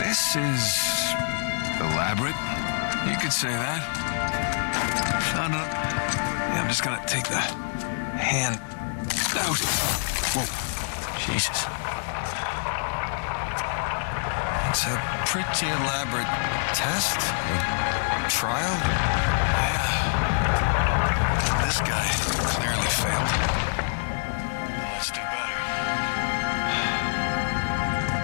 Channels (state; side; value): silent; right; digital silence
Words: is elaborate. You could say that. No. Yeah, I'm just gonna take the hand out. Whoa. Jesus. It's a pretty elaborate test. Trial? Yeah. And this guy clearly failed. Then let's do better.